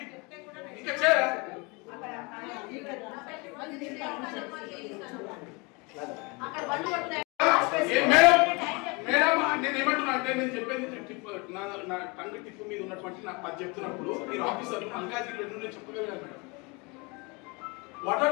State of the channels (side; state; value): right; quieter; 28.6 dB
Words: ఇంకా చేయరా మేడం నేను ఏమంటున్నా అంటే నేను చెప్పేది నా టంగ్ టిప్పు మీద ఉన్నటువంటి నాకు పది చెప్తున్నప్పుడు మీరు ఆఫీసర్ మల్కాజ్గిరి నేను చెప్పగలిగాను madam. What